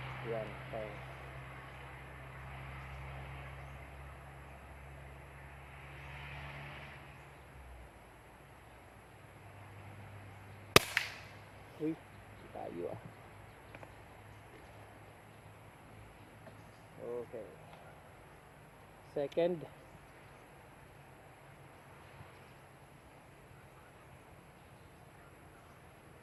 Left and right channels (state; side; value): identical; both; correlation 1.00